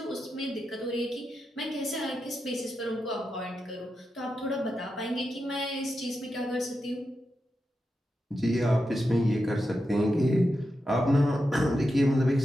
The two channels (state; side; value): normal; both; correlation 0.88